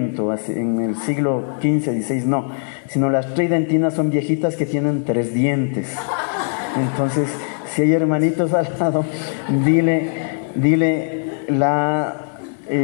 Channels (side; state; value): right; silent; digital silence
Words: en el siglo XV, XVI, no, sino las tridentinas son viejitas que tienen 3 dientes. Entonces, si hay hermanitos al lado, dile la